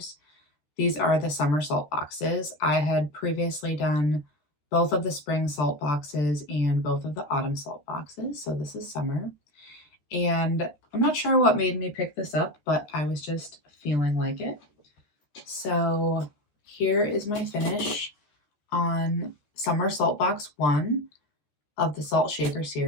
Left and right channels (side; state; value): right; late; 13 ms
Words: These are the summer salt boxes. I had previously done both of the spring salt boxes and both of the autumn salt boxes, so this is summer. And I'm not sure what made me pick this up, but I was just feeling like it. So here is my finish on Summer Salt Box 1 of the Salt Shaker